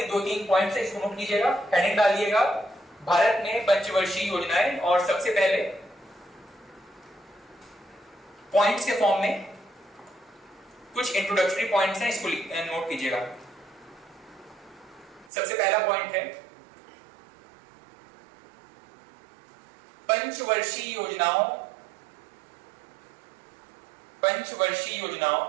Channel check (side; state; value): left; drops out; at 15.3 s